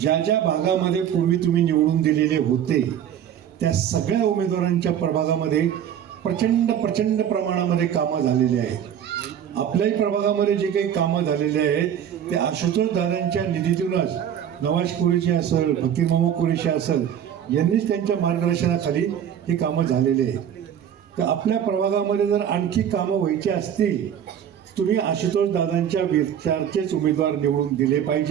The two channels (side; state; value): left; quieter; 9.4 dB